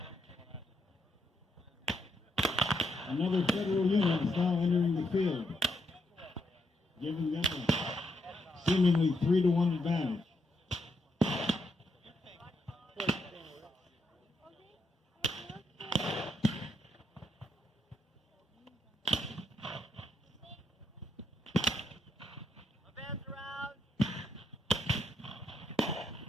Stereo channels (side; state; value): both; normal; correlation 0.79